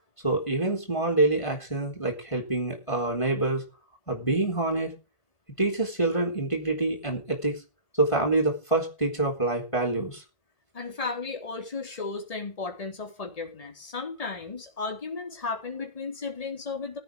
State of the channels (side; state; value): right; late; 1.7 ms